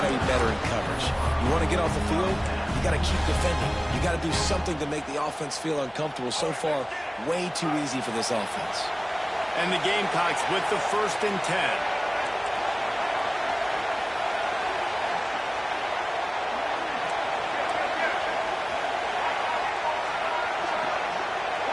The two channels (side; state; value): both; identical; correlation 1.00